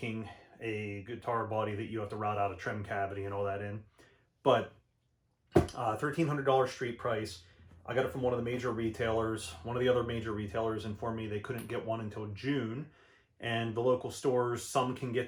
a guitar body that you have to route out a trim cavity and all that in. But $1,300 street price. I got it from one of the major retailers. One of the other major retailers informed me they couldn't get one until June. And the local stores, some can get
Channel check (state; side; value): identical; both; correlation 1.00